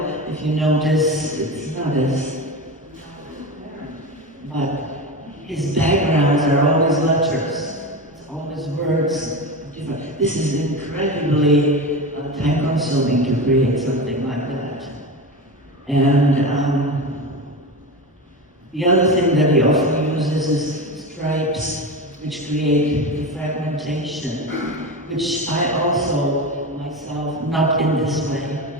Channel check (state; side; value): normal; both; correlation 0.24